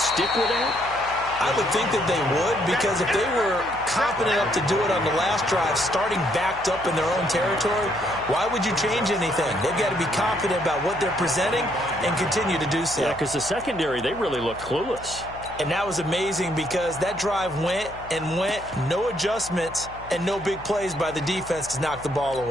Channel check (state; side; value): noise; left; hum, 17 dB below the sound